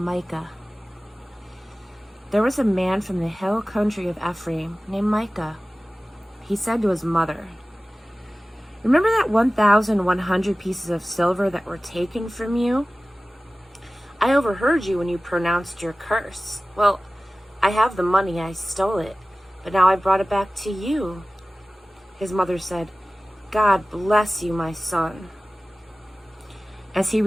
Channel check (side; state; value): both; normal; correlation 0.97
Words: There was a man from the hill country of Ephraim named Micah. He said to his mother, "Remember that 1,100 pieces of silver that were taken from you? I overheard you when you pronounced your curse. Well, I have the money, I stole it, but now I brought it back to you." His mother said, "God bless you, my son." As he